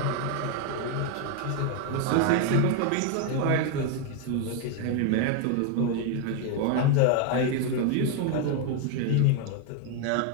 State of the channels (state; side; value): different; both; correlation 0.01